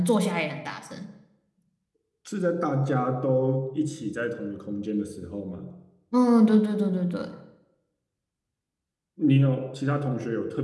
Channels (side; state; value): both; identical; correlation 1.00